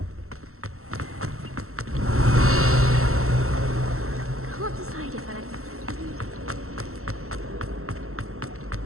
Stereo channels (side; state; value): left; late; 0.63 ms